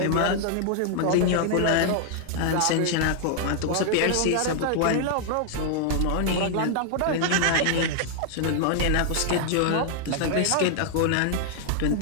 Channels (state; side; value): different; both; correlation 0.00